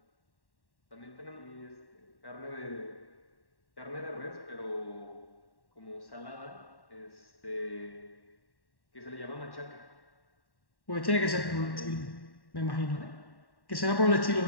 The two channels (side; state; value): right; late; 1.1 ms